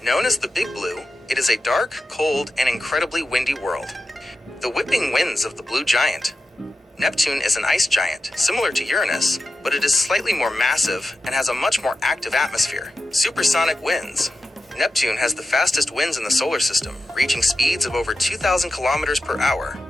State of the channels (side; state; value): both; normal; correlation 0.91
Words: Known as the Big Blue, it is a dark, cold, and incredibly windy world. The whipping winds of the blue giant. Neptune is an ice giant, similar to Uranus, but it is slightly more massive and has a much more active atmosphere. Supersonic winds. Neptune has the fastest winds in the solar system, reaching speeds of over 2,000 kilometers per hour,